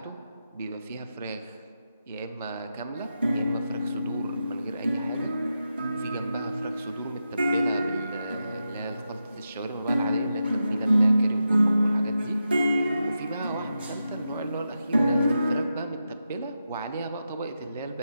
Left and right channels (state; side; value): inverted; both; correlation -0.88